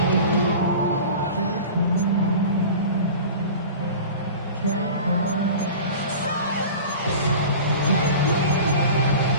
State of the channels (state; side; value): inverted; both; correlation -0.37